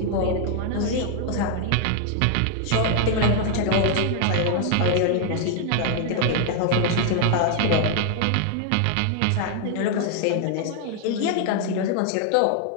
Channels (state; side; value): different; both; correlation 0.00